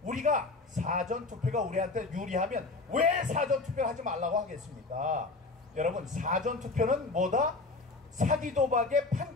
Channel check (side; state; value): right; quieter; 3.5 dB